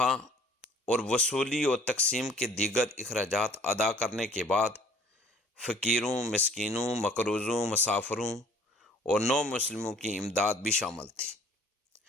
اور وصولی اور تقسیم کے دیگر اخراجات ادا کرنے کے بعد فقیروں، مسکینوں، مقروضوں، مسافروں اور نو مسلموں کی امداد بھی شامل تھی۔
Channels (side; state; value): both; normal; correlation 0.54